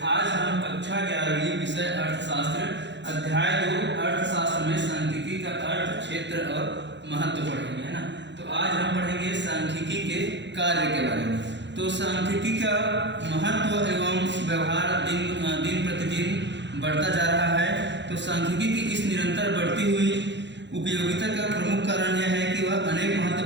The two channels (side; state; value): left; late; 0.52 ms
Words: आज हम कक्षा 11वीं विषय अर्थशास्त्र अध्याय 2 अर्थशास्त्र में सांख्यिकी का अर्थ, क्षेत्र और महत्व पढ़ेंगे, है ना। तो आज हम पढ़ेंगे सांख्यिकी के कार्य के बारे में। तो सांख्यिकी का महत्व एवं व्यवहार दिन प्रतिदिन बढ़ता जा रहा है। तो सांख्यिकी की इस निरंतर बढ़ती हुई उपयोगिता का प्रमुख कारण यह है कि वह अनेक